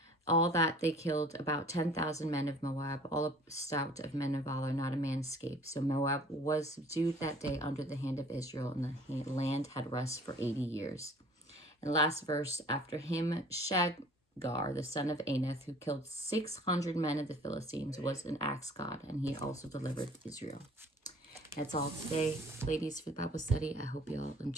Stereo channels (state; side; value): normal; both; correlation 0.50